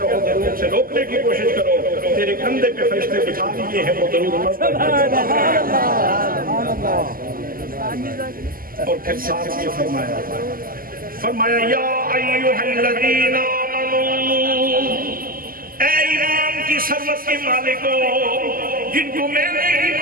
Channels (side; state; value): left; late; 0.42 ms